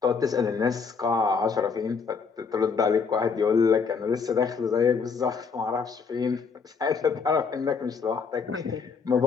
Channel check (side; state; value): right; quieter; 5.5 dB